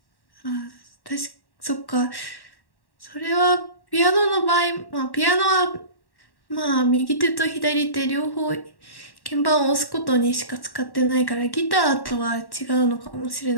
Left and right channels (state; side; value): late; right; 1.1 ms